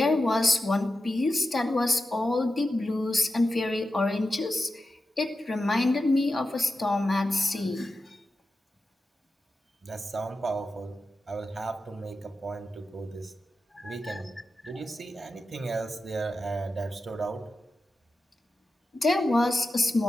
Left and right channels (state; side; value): normal; both; correlation 0.91